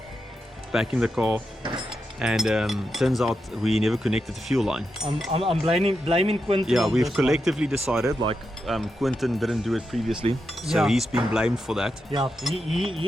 Back in the car, and turns out we never connected the fuel line. I'm blaming Quentin. Yeah, on we've this collectively decided, like Quentin didn't do it previously, so Yeah. he's been blamed for that. Yeah,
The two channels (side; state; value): both; normal; correlation 0.87